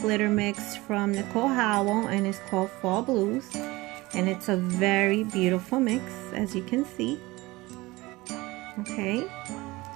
glitter mix from Nicole Howell and it's called Fall Blues, and it's a very beautiful mix, as you can see. Okay,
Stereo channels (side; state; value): left; quieter; 21.0 dB